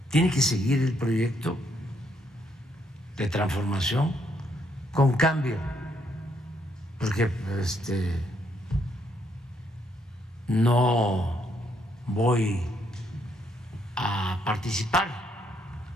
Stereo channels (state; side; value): normal; both; correlation 0.73